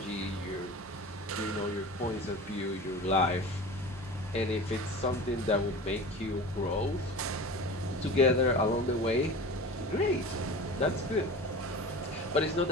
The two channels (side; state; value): both; normal; correlation 0.35